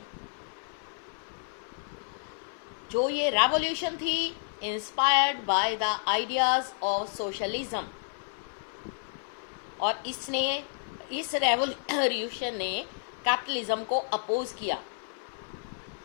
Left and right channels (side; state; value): right; silent; 56 dB below the other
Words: जो ये revolution थी inspired by the ideas of socialism, और इस revolution ने capitalism को अपोज किया